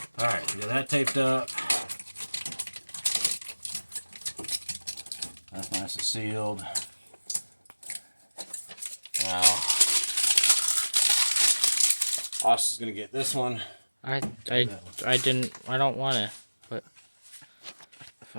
All right, we got that taped up. That's nice and sealed. Now, Austin's gonna get this one. I don't want to, but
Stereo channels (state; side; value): inverted; both; correlation -1.00